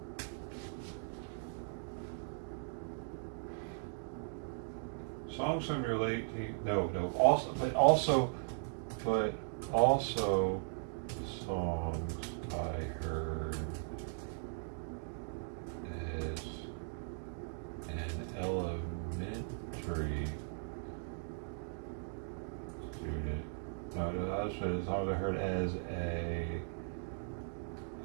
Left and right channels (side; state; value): left; silent; digital silence